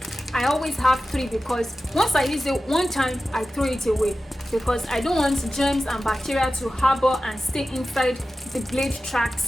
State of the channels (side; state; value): both; normal; correlation 0.94